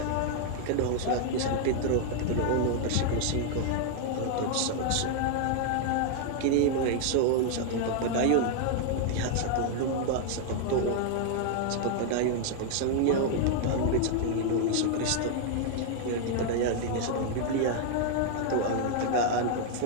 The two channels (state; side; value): different; both; correlation 0.00